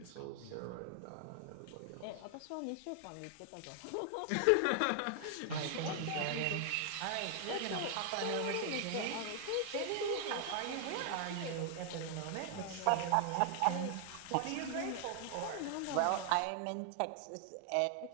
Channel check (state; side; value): different; both; correlation 0.00